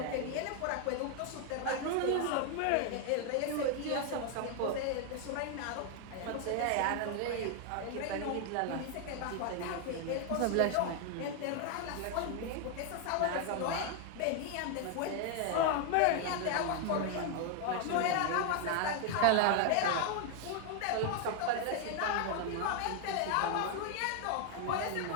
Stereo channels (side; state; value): both; different; correlation 0.00